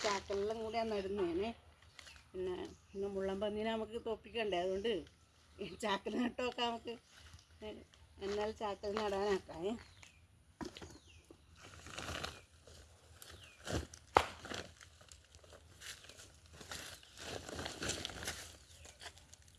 ചാക്കെല്ലാം കൂടിയാണ് നടുന്നേനെ. പിന്നെ മുള്ളം പന്നീനെ നമുക്ക് തോപ്പിക്കണ്ടേ, അതുകൊണ്ട് ചാക്കിൽ നട്ടൊക്കെ നമുക്ക് എന്നാൽ ചാക്കിൽ നടാനാക്കാം.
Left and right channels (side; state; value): both; identical; correlation 1.00